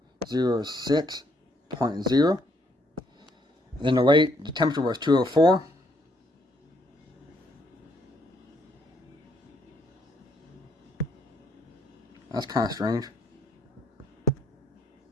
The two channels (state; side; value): normal; both; correlation 0.70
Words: Then the temperature was 204. That's kind of strange.